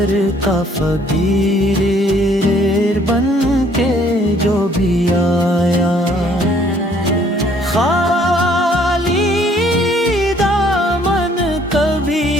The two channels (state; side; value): normal; both; correlation 0.61